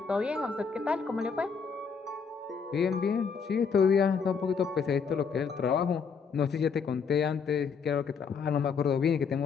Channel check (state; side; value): quieter; right; 5.9 dB